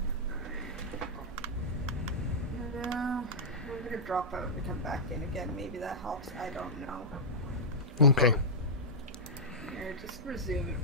No, I'm gonna drop out and come back in again. Maybe that helps. I don't know. Okay. Here, just resume it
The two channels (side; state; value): both; normal; correlation -0.09